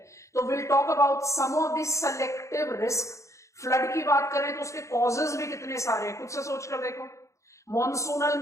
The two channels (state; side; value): late; right; 0.15 ms